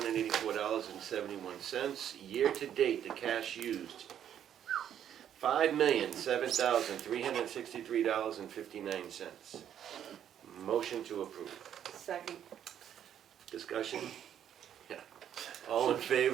Year-to-date, the cash used, $5,007,363.59. Motion to approve. Second. Discussion? Yeah. All in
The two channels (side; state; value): left; quieter; 9.8 dB